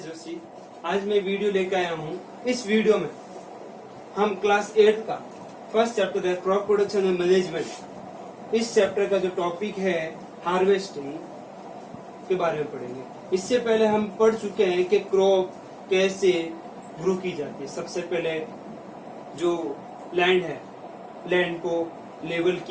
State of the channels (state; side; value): identical; both; correlation 1.00